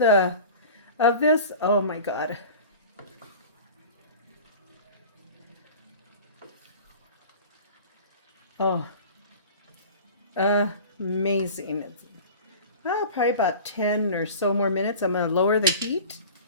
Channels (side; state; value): both; inverted; correlation -0.38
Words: of this, oh my God. Oh, amazing. Probably about 10 or so more minutes. I'm going to lower the heat